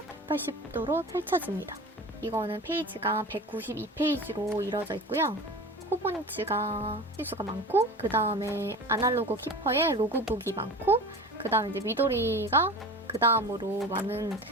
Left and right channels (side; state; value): both; normal; correlation 0.34